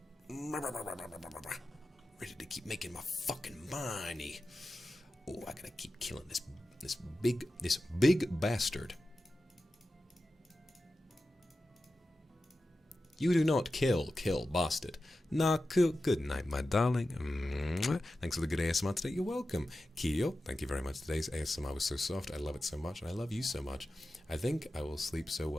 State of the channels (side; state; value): both; normal; correlation 0.93